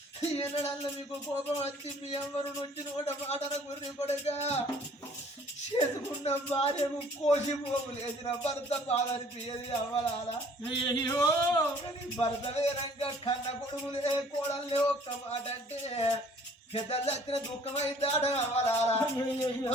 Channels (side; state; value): both; normal; correlation 0.55